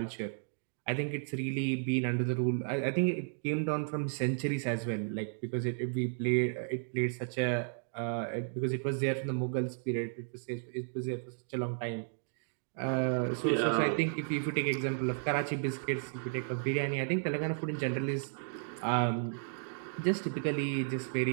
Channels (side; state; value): left; silent; digital silence